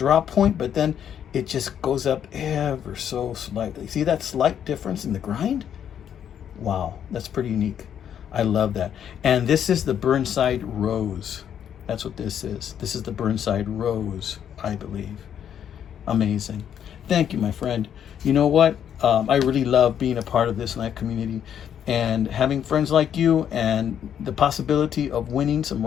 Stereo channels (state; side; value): quieter; right; 9.1 dB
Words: point, but then it just goes up ever so slightly. See that slight difference in the grind? Wow, that's pretty unique. I love that. And this is the Burnside Rose. That's what this is. This is the Burnside Rose, I believe. Amazing. Thank you, my friend. You know what? I really love being a part of this knife community and having friends like you, and the possibility of winning some